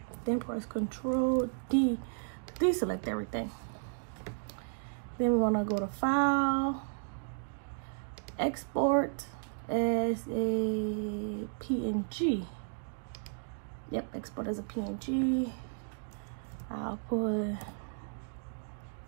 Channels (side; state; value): left; silent; digital silence